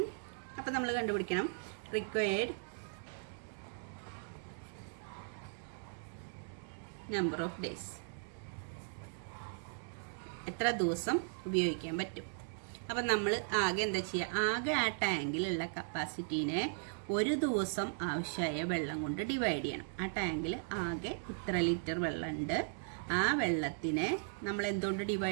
അപ്പം നമ്മൾ കണ്ടുപിടിക്കണം റിക്വയർഡ് നമ്പർ ഓഫ് ഡേയ്സ്, എത്ര ദിവസം ഉപയോഗിക്കാൻ പറ്റും. അപ്പം നമ്മൾ ആകെ എന്താ ചെയ്യുക? ആകെ ആ ടാങ്കിലുള്ള കപ്പാസിറ്റീനെ ഒരു ദിവസം ആവശ്യമായ വെള്ളം കൊണ്ട് ഡിവൈഡ് ചെയ്യണം. ആ ടാങ്കിൽ ആകെ ഇത്ര ലിറ്റർ വെള്ളമുണ്ട്. ആ വെള്ളത്തിനെ നമ്മൾ എന്തുകൊണ്ട്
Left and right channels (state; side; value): silent; left; digital silence